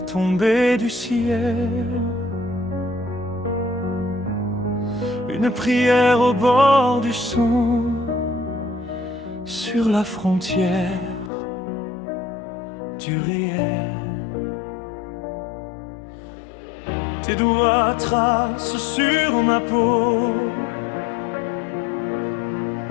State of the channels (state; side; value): drops out; right; at 11.3 s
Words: tombé du ciel, une prière au bord du son, sur la frontière du réel. Tes doigts tracent sur ma peau